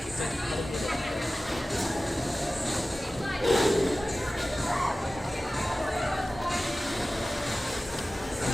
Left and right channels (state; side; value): normal; both; correlation 0.96